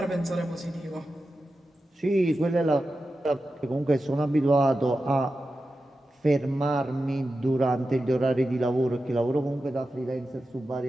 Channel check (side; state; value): both; normal; correlation 0.92